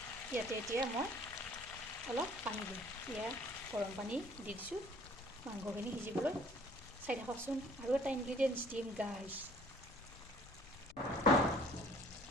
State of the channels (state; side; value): noise; left; rumble, 19 dB below the sound